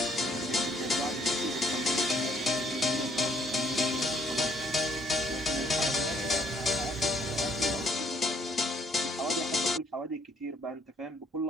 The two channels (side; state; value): both; normal; correlation 0.65